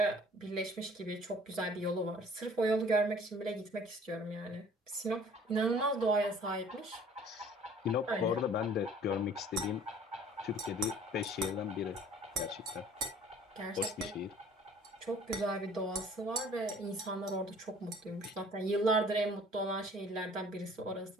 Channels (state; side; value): normal; both; correlation 0.52